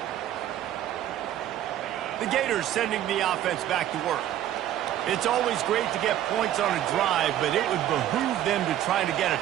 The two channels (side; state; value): left; quieter; 12.1 dB